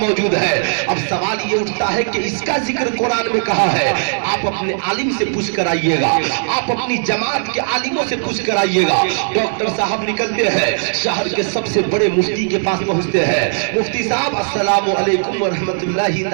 ہے۔ اب سوال یہ اٹھتا ہے کہ اس کا ذکر قرآن میں کہا ہے؟ آپ اپنے عالم سے پوچھ کر آئیے گا، آپ اپنی جماعت کے عالموں سے پوچھ کر آئیے گا۔ ڈاکٹر صاحب نکلتے ہیں، شہر کے سب سے بڑے مفتی کے پاس پہنچتے ہیں، مفتی صاحب السلام علیکم ورحمۃ اللہ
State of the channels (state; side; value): silent; left; digital silence